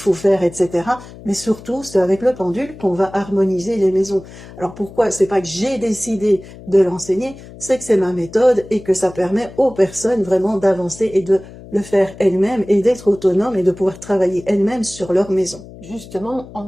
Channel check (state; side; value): noise; left; hum, 17 dB below the sound